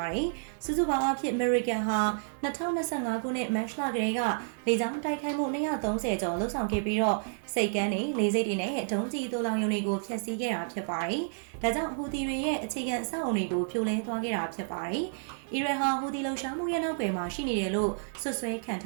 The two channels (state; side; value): silent; left; digital silence